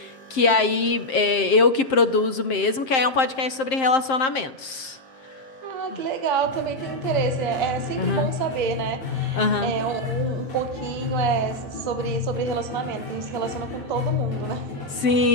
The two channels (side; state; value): right; late; 7.6 ms